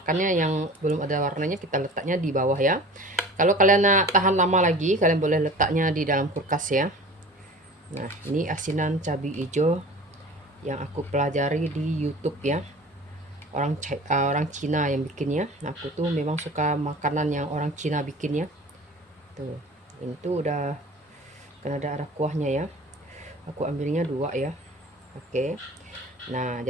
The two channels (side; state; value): both; normal; correlation 0.41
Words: yang belum ada warnanya, kita letaknya di bawah ya. Kalau kalian nak tahan lama lagi, kalian boleh letaknya di dalam kulkas ya. Nah, ini asinan cabai hijau yang aku pelajari di YouTube ya. Orang Cina yang bikinnya. Nah, aku tuh memang suka makanan yang orang Cina bikin ya. Tuh, ini tuh udah kan ada kuahnya ya. Aku ambilnya 2 ya. Oke. Nah,